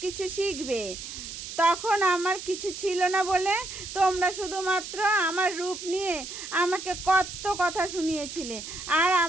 কিছু শিখবে। তখন আমার কিছু ছিল না বলে তোমরা শুধুমাত্র আমার রূপ নিয়ে আমাকে কত কথা শুনিয়েছিলে আর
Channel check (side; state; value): right; noise; hiss, 9 dB below the sound